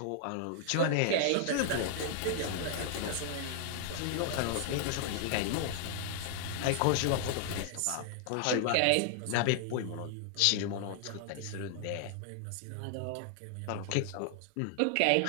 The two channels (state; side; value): different; both; correlation 0.00